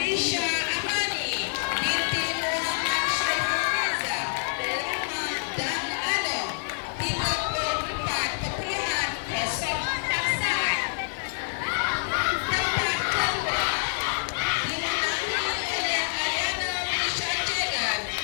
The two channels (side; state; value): right; silent; digital silence